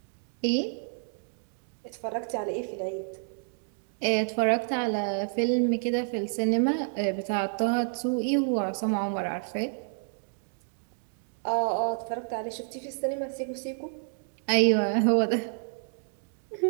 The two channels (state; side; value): silent; left; 58 dB below the other